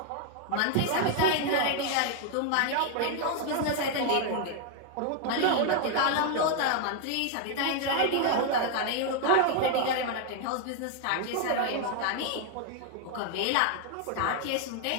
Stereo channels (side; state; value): both; different; correlation 0.00